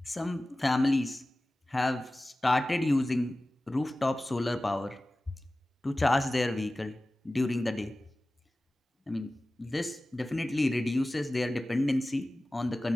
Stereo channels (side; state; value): both; normal; correlation 0.97